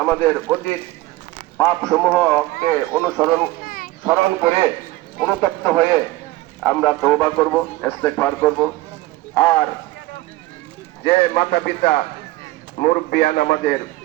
আমাদের অতীত পাপ সমূহকে স্মরণ করে অনুতপ্ত হয়ে আমরা তওবা করব, ইস্তেগফার করব। আর যে মাতা পিতা মুরব্বিয়ান আমাদের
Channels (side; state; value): left; quieter; 18.4 dB